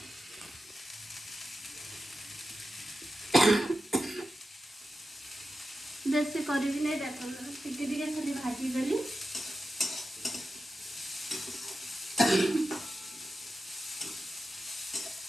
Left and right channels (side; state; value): both; normal; correlation 0.91